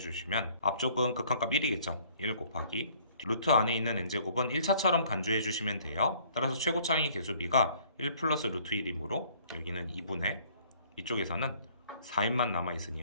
앞쪽은 극한값 1이겠죠. 1 곱하기 루트 안에 있는 n제곱은 1차처럼 간주해 주시면 돼요. 따라서 최고차항의 개수비가 1 플러스 루트 1이므로 여기는 2분의 이쪽에서는 4n만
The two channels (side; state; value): both; inverted; correlation -0.58